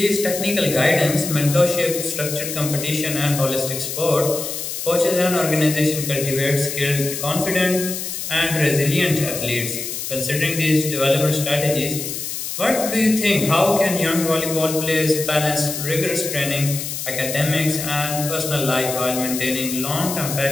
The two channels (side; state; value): left; noise; hiss, 5 dB below the sound